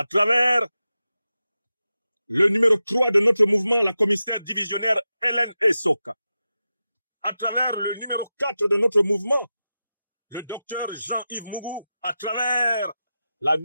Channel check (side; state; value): both; inverted; correlation -0.92